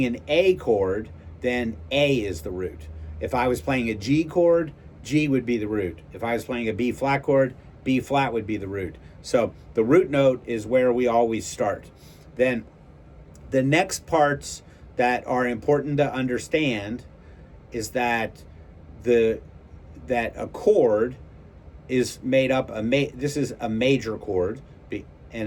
an A chord, then A is the root. If I was playing a G chord, G would be the root. If I was playing a B flat chord, B flat would be the root. So the root note is where we always start. Then the next parts that are important to understand is that a chord is made up, this is a major chord,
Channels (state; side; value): identical; both; correlation 1.00